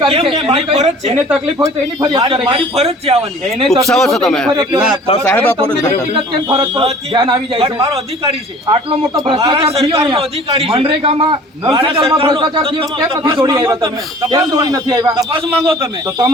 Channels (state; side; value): normal; both; correlation 0.48